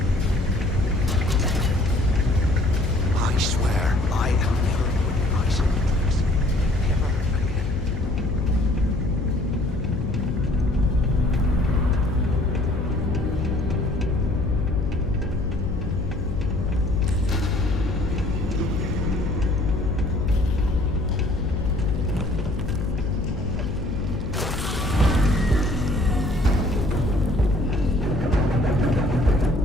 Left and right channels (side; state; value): left; noise; hum, 5 dB below the sound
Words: I swear, I am never putting ice in the drinks. Never again.